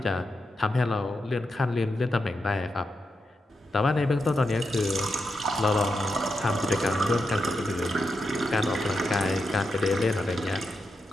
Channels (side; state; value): both; normal; correlation 0.86